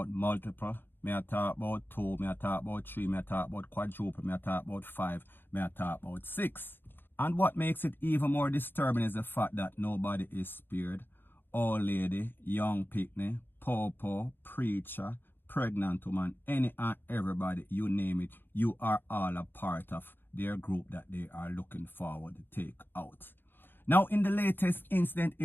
multiple. May I talk about 2, may I talk about 3, may I talk about quadruple, may I talk about 5, may I talk about 6. And what makes it even more disturbing is the fact that nobody is spared. Old lady, young picnic, popo, preacher, pregnant woman, any and everybody, you name it, you are all a part of their group that they are looking forward to take out. Now in the latest incident,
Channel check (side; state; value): right; late; 0.099 ms